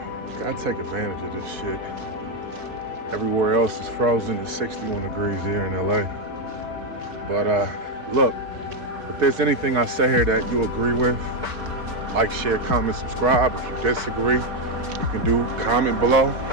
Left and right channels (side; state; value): left; late; 4.6 ms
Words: gotta take advantage of this shit. Everywhere else is frozen. It's 61 degrees here in LA. But look, if there's anything I say here that you agree with, like, share, comment, subscribe. If you disagree, you can comment below.